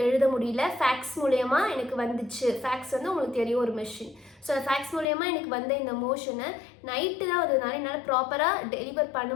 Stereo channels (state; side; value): drops out; right; at 5.1 s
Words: எழுத முடியல. ஃபேக்ஸ் மூலயமா எனக்கு வந்துச்சு. ஃபேக்ஸ் வந்து உங்களுக்கு தெரியும் ஒரு மிஷின். ஸோ ஃபேக்ஸ் மூலயமா எனக்கு வந்த இந்த மோஷனை நைட்டு தான் வந்ததுனால என்னால் ப்ராப்பராக டெலிவர் பண்ண